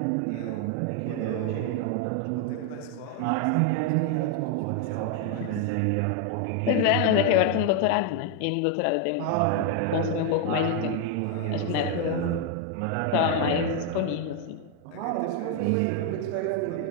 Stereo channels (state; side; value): different; both; correlation 0.01